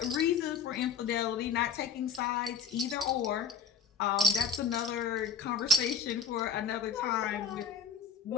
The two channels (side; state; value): right; quieter; 5.5 dB